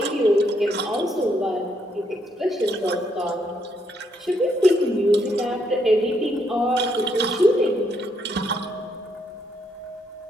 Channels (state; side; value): normal; both; correlation 0.74